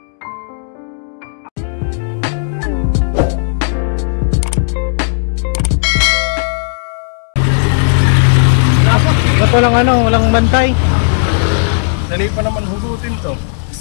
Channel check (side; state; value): right; silent; digital silence